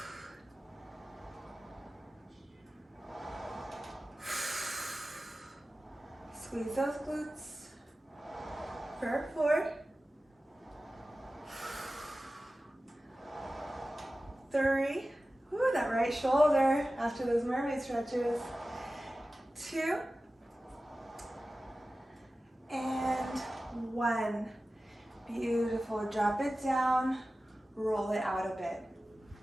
Squeeze those glutes. For 4. 3. Ooh, that right shoulder after those mermaid stretches. 2. And 1. Beautiful. Drop it down, roll it out a bit.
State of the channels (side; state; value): both; normal; correlation 0.95